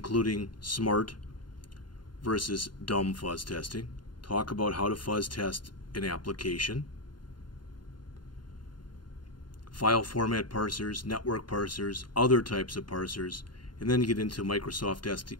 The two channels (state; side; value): late; right; 0.71 ms